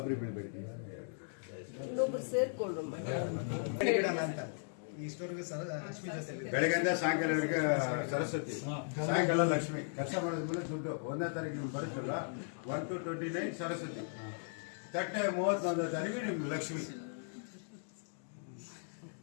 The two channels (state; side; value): silent; right; digital silence